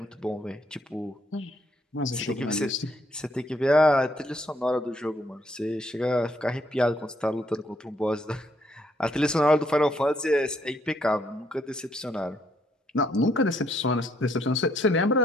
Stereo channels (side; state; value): both; normal; correlation 0.70